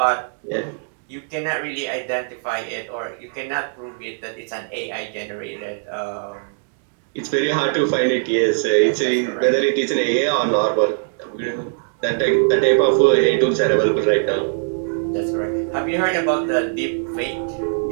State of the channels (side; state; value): left; silent; digital silence